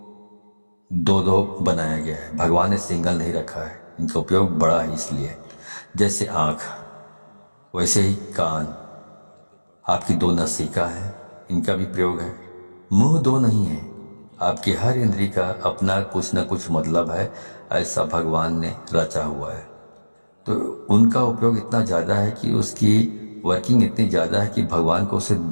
2-2 बनाया गया है। भगवान ने सिंगल नहीं रखा है, इनका उपयोग बड़ा है। इसलिए जैसे आँख वैसे ही कान, आपकी 2 नासिका है, इनका भी प्रयोग है। मुंह 2 नहीं है। आपकी हर इंद्री का अपना कुछ न कुछ मतलब है, ऐसा भगवान ने रचा हुआ है। तो उनका उपयोग इतना ज़्यादा है कि उसकी वर्किंग इतनी ज़्यादा है कि भगवान को उसे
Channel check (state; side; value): inverted; both; correlation -1.00